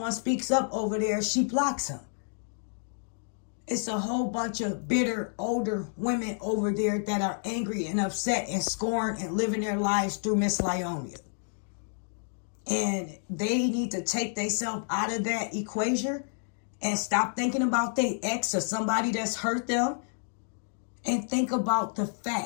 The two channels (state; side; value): silent; right; digital silence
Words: speaks up over there, she blocks them. It's a whole bunch of bitter, older women over there that are angry and upset and scorned and living their lives through Miss Lieonya. And they need to take themselves out of that equation and stop thinking about their ex or somebody that's hurt them, and think about the